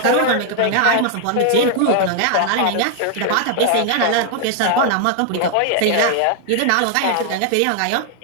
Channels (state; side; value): different; both; correlation 0.00